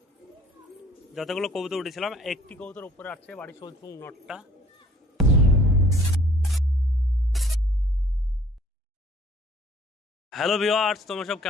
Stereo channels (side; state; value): both; normal; correlation 0.57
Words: যতগুলো কবুতর উঠেছিলাম, একটি কবুতর উপরে আসছে, বাড়ি চলছে নটটা। হ্যালো ভিউয়ার্স, তোমরা সব